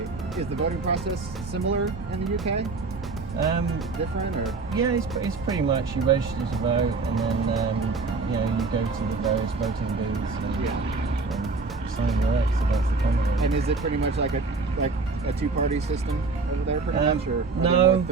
Is the voting process similar in the UK? Different or? Yeah, it's pretty much you register to vote, and then you go to the various voting booths and sign your X against the candidate. And is it pretty much like a two-party system over there, pretty much, or no?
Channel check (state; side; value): quieter; left; 4.1 dB